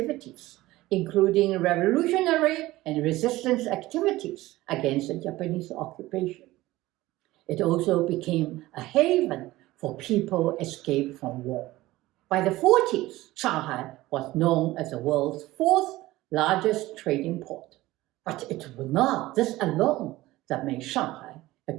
including revolutionary and resistance activities against the Japanese occupation. It also became a haven for people escaped from war. By the 40s, Shanghai was known as the world's 4th largest trading port. But it was not this alone that made Shanghai a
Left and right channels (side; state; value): left; quieter; 17.8 dB